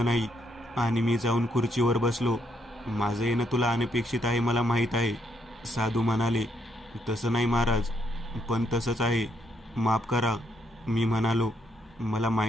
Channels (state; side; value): normal; both; correlation 0.75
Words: नाही आणि मी जाऊन खुर्चीवर बसलो. माझं येणं तुला अनपेक्षित आहे मला माहीत आहे, साधू म्हणाले. तसं नाही महाराज, पण तसंच आहे, माफ करा, मी म्हणालो. मला